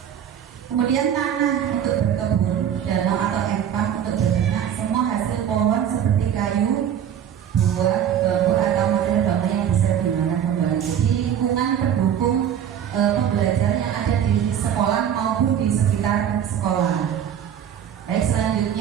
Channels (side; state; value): left; quieter; 9.3 dB